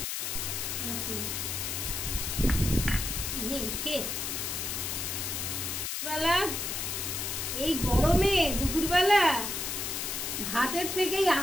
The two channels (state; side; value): noise; left; hiss, 2 dB below the sound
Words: মেখে বেলা এই গরমে দুপুরবেলা ভাতের থেকেই